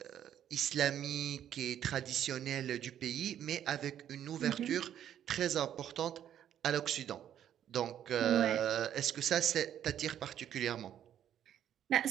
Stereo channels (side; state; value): left; quieter; 10.3 dB